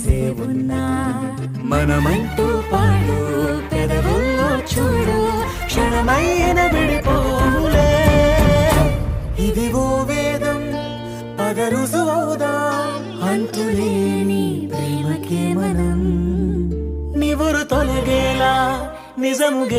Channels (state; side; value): identical; both; correlation 1.00